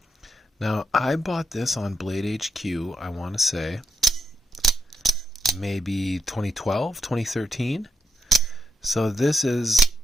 Now, I bought this on Blade HQ, I want to say, maybe 2012, 2013. So this is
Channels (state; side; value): normal; both; correlation 0.81